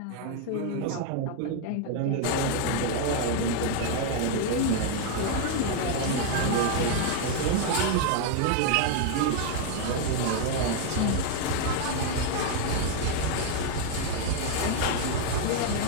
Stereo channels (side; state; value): both; different; correlation 0.00